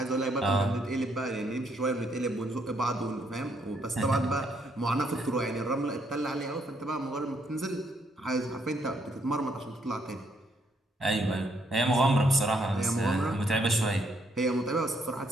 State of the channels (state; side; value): normal; both; correlation 0.72